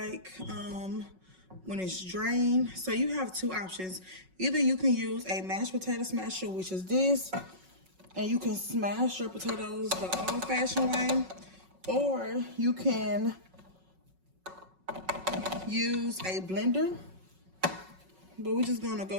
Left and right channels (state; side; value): late; left; 5.4 ms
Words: when it's drained. So you have 2 options. Either you can use a mashed potato smasher, which is this, and you can smash your potatoes the old-fashioned way, or you can use a blender. But we're just gonna